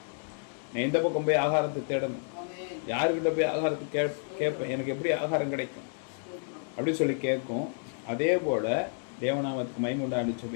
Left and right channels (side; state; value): right; silent; digital silence